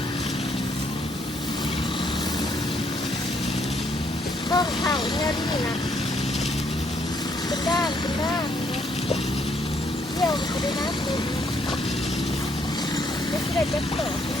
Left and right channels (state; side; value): normal; both; correlation 0.70